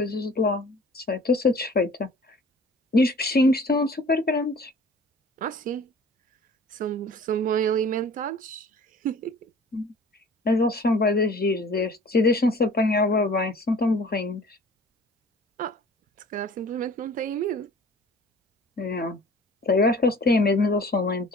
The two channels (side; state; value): both; normal; correlation 0.48